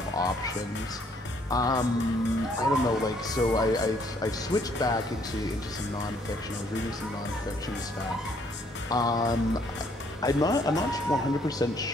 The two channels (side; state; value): both; normal; correlation 0.66